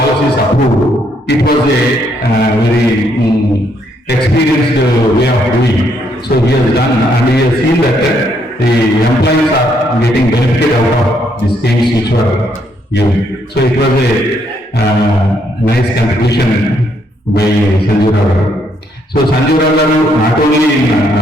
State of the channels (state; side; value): normal; both; correlation 0.72